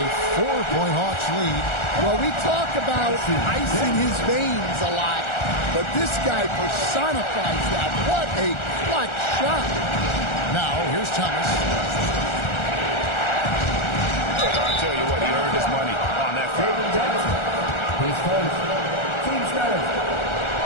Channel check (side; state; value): right; late; 1.4 ms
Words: 4-point Hawks lead. Well, we talk about ice in his veins a lot, but this guy personifies that. What a clutch shot. Now, here's Thomas. I'll tell you what, he earned his money on that foul. His first team starter.